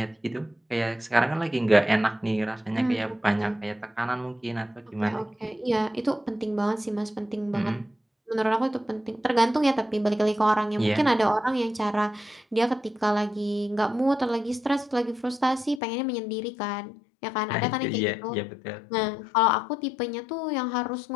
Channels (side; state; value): right; drops out; at 15.8 s